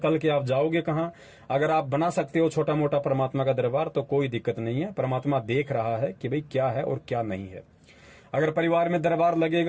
के आप जाओगे कहां। अगर आप बना सकते हो छोटा मोटा परमात्मा का दरबार तो कोई दिक्कत नहीं है। परमात्मा देख रहा है कि भाई क्या है और क्या नहीं है। अगर परिवार में दरबार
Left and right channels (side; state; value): both; identical; correlation 1.00